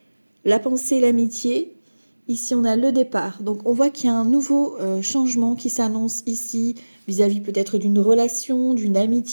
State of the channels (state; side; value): inverted; both; correlation -1.00